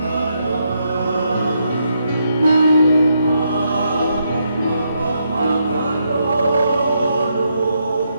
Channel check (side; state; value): both; inverted; correlation -0.79